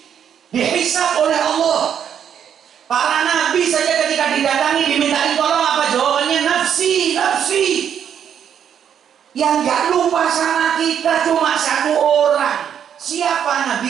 dihisab oleh Allah. Para nabi saja ketika didatangi dimintain tolong, apa jawabannya? Nafsi, nafsi. Yang gak lupa sama kita cuma 1 orang. Siapa?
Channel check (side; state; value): left; quieter; 8.7 dB